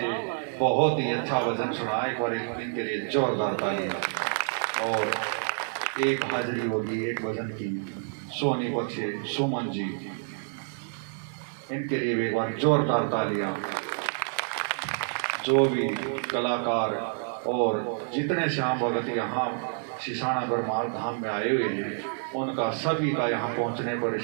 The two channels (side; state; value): left; silent; 59 dB below the other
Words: बहुत ही अच्छा भजन सुना। एक बार इनके लिए जोरदार तालियां। और एक हाजिरी होगी एक भजन की सोनीपत से सुमन जी, इनके लिए भी एक बार जोरदार तालियां। जो भी कलाकार और जितने श्याम भगत यहाँ शिशाना बरमाल धाम में आए हुए हैं, उनका सभी का यहाँ पहुँचने पर